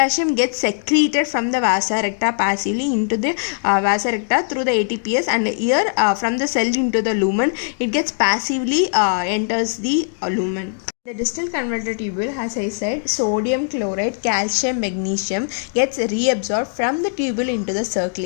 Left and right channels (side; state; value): right; silent; digital silence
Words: gets secreted from the vasa recta passively into the vasa recta through the ATPase, and here from the cell into the lumen it gets passively enters the lumen. The distal converter tubule, as I said, sodium, chloride, calcium, magnesium gets reabsorbed from the tubule into the